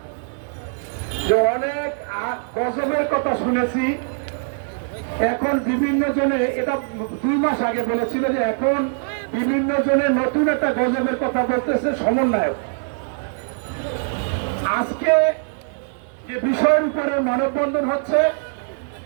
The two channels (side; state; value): left; silent; 64 dB below the other